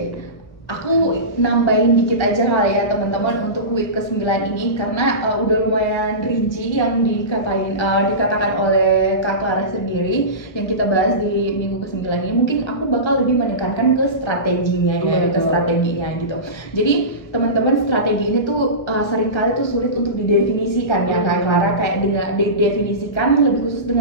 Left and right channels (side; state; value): right; late; 1.1 ms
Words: Aku nambahin dikit aja kali ya teman-teman untuk week ke-9 ini karena udah lumayan rinci yang dikatakan oleh Kak Clara sendiri yang kita bahas di minggu ke-9 ini. Mungkin aku bakal lebih menekankan ke strateginya ya, ke strateginya gitu. Jadi teman-teman, strategi ini tuh seringkali tuh sulit untuk didefinisikan ya Kak Clara, kayak dengan didefinisikan lebih khusus